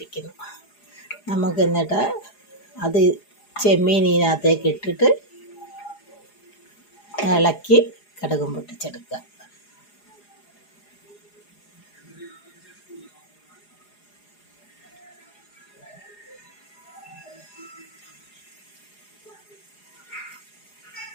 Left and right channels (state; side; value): late; right; 4.8 ms